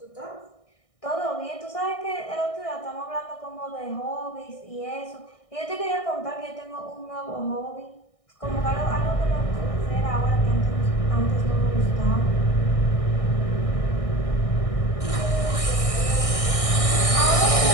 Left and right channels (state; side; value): late; right; 1.6 ms